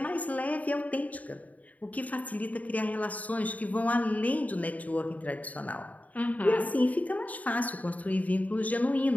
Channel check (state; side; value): late; right; 0.072 ms